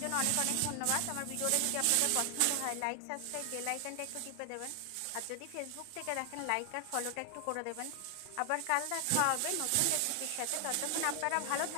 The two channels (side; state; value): both; different; correlation 0.00